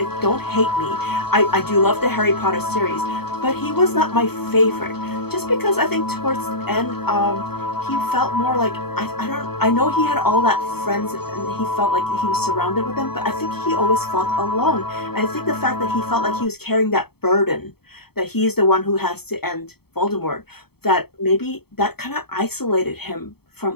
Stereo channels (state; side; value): late; right; 0.96 ms